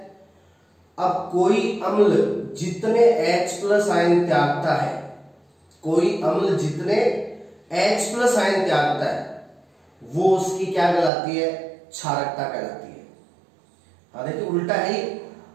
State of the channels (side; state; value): left; drops out; at 11.1 s